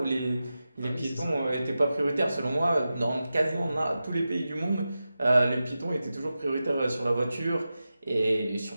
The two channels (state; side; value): inverted; both; correlation -0.93